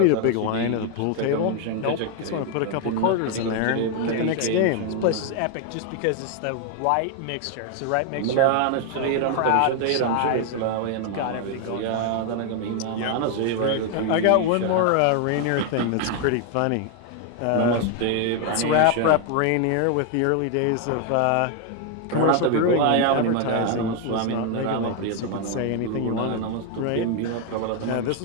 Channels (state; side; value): different; both; correlation 0.01